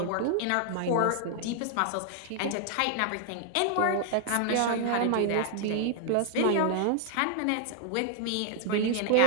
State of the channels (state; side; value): different; both; correlation 0.00